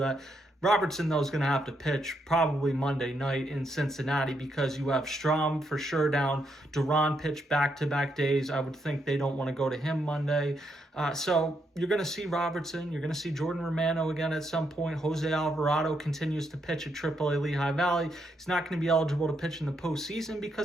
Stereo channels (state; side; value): normal; both; correlation 0.78